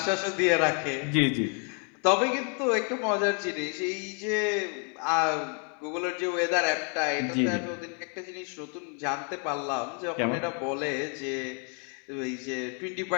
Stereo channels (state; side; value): quieter; right; 39.0 dB